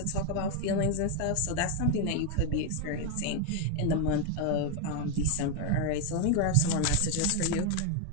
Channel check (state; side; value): different; both; correlation 0.01